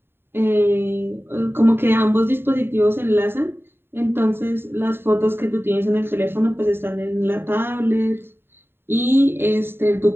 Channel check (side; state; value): left; late; 0.11 ms